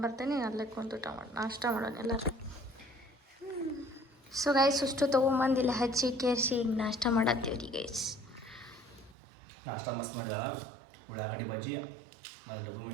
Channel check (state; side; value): drops out; left; at 9.2 s